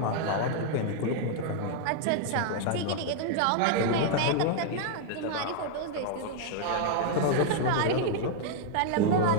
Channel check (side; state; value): both; different; correlation 0.00